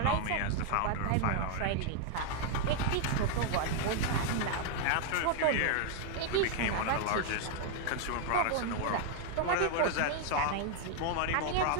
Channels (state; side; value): different; both; correlation 0.00